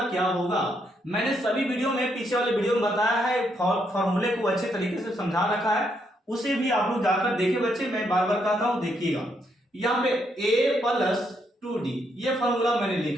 क्या होगा। मैंने सभी वीडियो में, पीछे वाले वीडियो में बताया है, फार्मूले को अच्छे तरीके से समझा रखा है, उसे भी आप लोग जाकर देखिए बच्चे। मैं बार बार कहता हूं, देखिएगा यहाँ पे a प्लस 2d ये फार्मूला मैंने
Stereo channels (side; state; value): both; normal; correlation 0.76